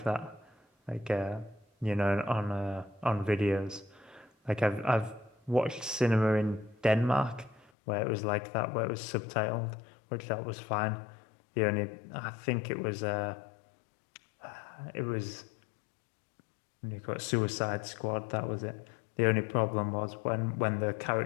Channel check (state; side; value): drops out; right; at 7.7 s